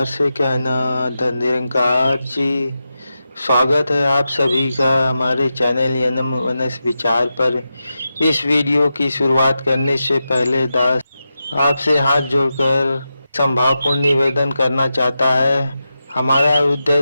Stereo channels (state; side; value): inverted; both; correlation -0.90